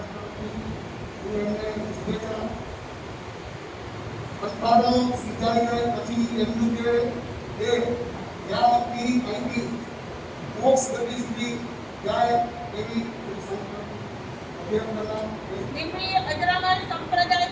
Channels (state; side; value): identical; both; correlation 1.00